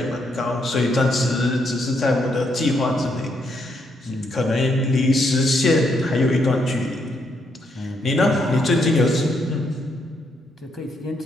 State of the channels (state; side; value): normal; both; correlation 0.76